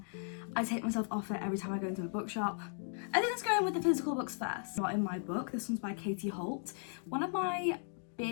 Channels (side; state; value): right; silent; 53 dB below the other